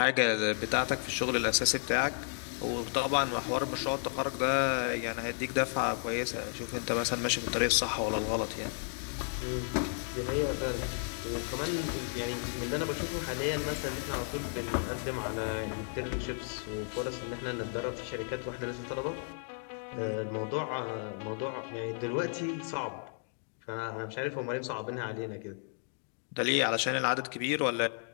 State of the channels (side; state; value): right; silent; 55 dB below the other